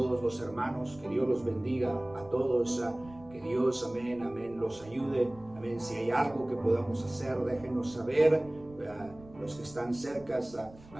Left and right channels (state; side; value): noise; right; rumble, 21 dB below the sound